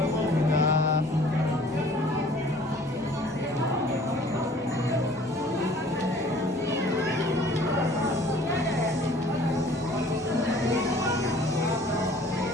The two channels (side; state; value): both; normal; correlation 0.52